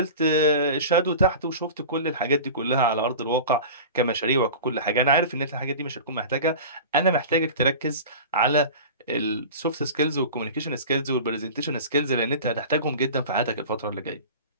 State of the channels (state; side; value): inverted; both; correlation -0.34